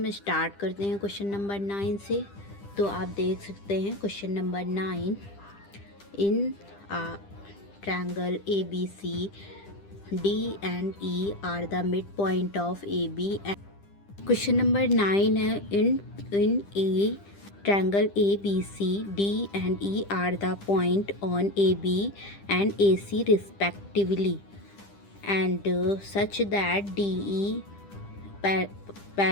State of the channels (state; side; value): late; right; 10 ms